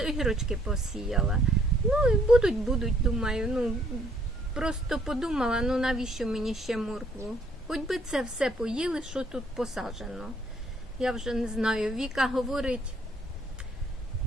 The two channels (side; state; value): both; normal; correlation 0.66